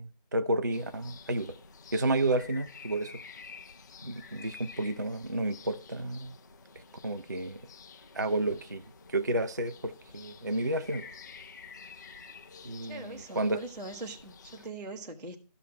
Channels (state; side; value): inverted; both; correlation -0.58